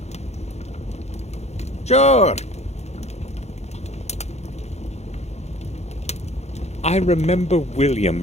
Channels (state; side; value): late; right; 0.32 ms